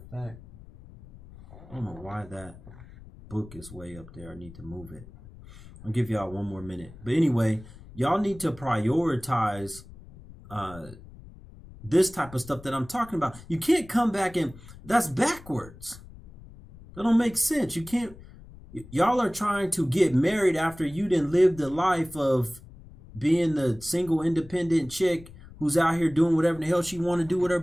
fact, I don't know why that book is way up there. I need to move it. I'll give y'all 1 more minute. But anyway, y'all need to prioritize this type of stuff that I'm talking about. You can't come back and that's backwards. That don't make sense. You can't. Y'all are trying to get married after you didn't live the life of being the single independent chick who's out here doing whatever the hell she want to do with her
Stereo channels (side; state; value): left; noise; rumble, 19 dB below the sound